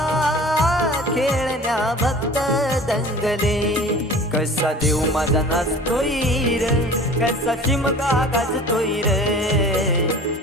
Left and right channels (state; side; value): normal; both; correlation 0.42